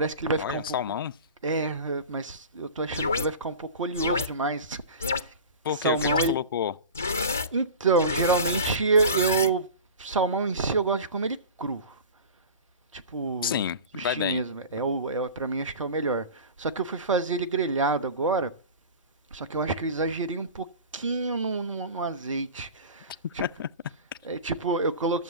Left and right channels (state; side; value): inverted; both; correlation -0.34